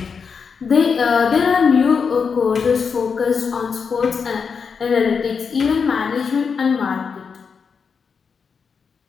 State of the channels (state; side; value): quieter; right; 5.9 dB